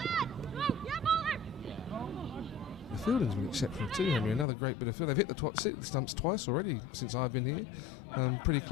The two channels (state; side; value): drops out; right; at 4.5 s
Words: The fielding's been exceptional too, Henry. Another great bit of field. They've hit the stumps twice already since I've been here. Pretty